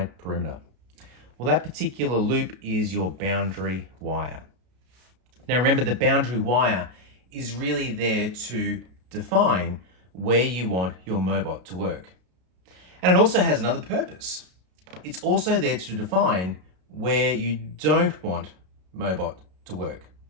perimeter. Well, that particular loop is your boundary wire. Now remember, the boundary wire is really there to define where you want your Mobot to work. And it also has another purpose. It's also there to define where you don't want Mobot to work.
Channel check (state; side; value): late; left; 33 ms